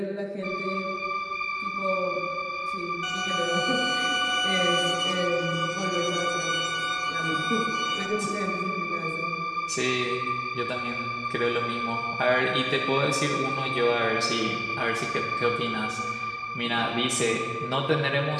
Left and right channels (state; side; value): identical; both; correlation 1.00